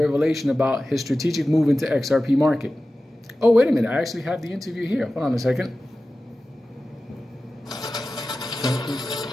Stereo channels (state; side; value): normal; both; correlation 0.95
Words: about his strategic move into XRP market. Oh, wait a minute. I actually have the interview here. Hold on a second.